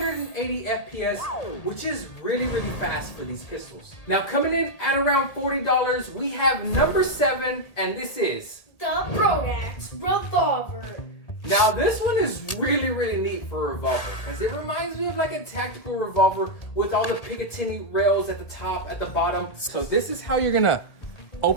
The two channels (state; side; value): late; right; 1.8 ms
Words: FPS, which is really, really fast for these pistols. Now coming in at around $40, we have number 7, and this is the Brodax revolver. Now this one is really, really neat for a revolver because it reminds me of like a tactical revolver with all the Picatinny rails at the top, at the bottom. So this is how you're gonna